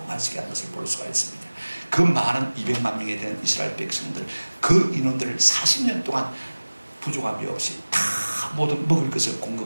마시게 한 것을 볼 수가 있습니다. 그 많은 200만 명에 대한 이스라엘 백성들, 그 인원들을 40년 동안 부족함이 없이 다 모든 먹을 것을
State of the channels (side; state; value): both; inverted; correlation -1.00